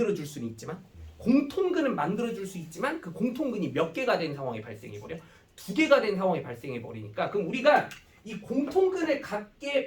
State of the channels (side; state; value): both; identical; correlation 1.00